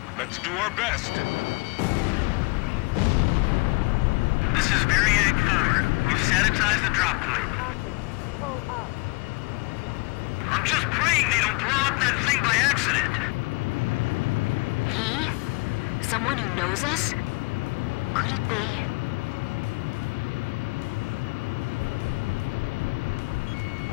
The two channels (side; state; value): right; quieter; 27.1 dB